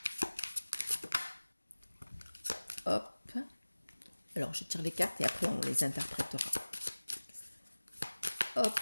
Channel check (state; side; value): inverted; both; correlation -1.00